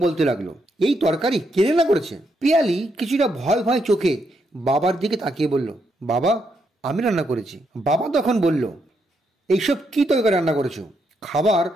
বলতে লাগলো, এই তরকারি কে রান্না করেছে? পিয়ালি কিছুটা ভয় ভয় চোখে বাবার দিকে তাকিয়ে বলল, বাবা আমি রান্না করেছি। বাবা তখন বলল, এইসব কি তরকারি রান্না করেছো? খাবার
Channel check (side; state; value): both; normal; correlation 0.78